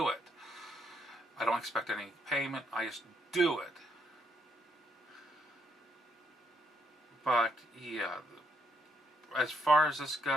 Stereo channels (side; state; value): both; normal; correlation 0.74